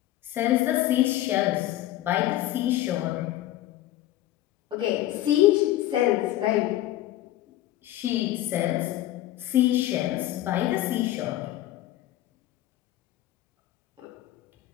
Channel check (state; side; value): quieter; right; 14.5 dB